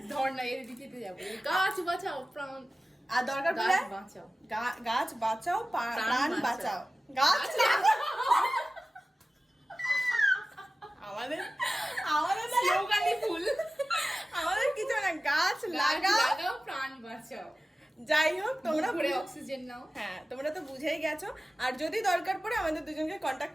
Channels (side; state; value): both; normal; correlation 0.96